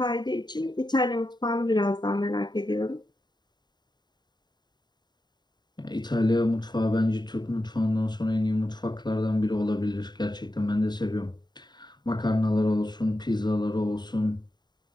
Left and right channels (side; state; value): right; late; 0.21 ms